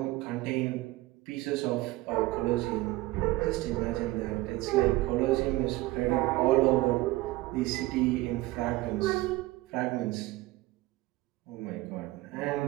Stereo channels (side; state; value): left; quieter; 19.1 dB